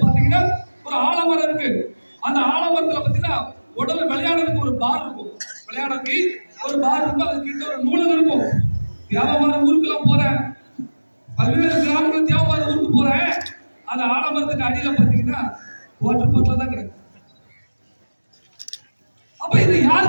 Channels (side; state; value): both; inverted; correlation -1.00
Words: பாத்தீங்கன்னா ஒரு ஆலமரம் இருக்கு. அந்த ஆலமரத்துல பாத்தீங்கன்னா உடல் விளையாடுறதுக்கு ஒரு பார் இருக்கும், விளையாடுறதுக்கு ஒரு பார் இருக்கும், அது கிட்ட ஒரு நூலகம் இருக்கும். தேவமார ஊருக்குலாம் போறேன், பல்வேறு கிராமங்கள் தேவமார ஊருக்கு போறேன். அந்த ஆலமரத்துக்கு அடியில பாத்தீங்கன்னா வாட்டர் பாட்டில தான் கிடக்கு. அப்ப இது